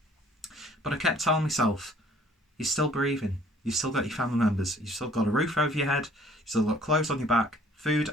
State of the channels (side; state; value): both; normal; correlation 0.57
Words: But I kept telling myself, you're still breathing, you've still got your family members, you've still got a roof over your head, you've still got clothes on your back, food